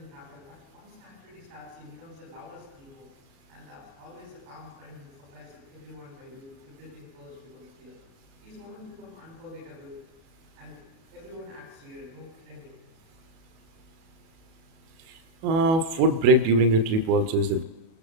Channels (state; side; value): late; left; 37 ms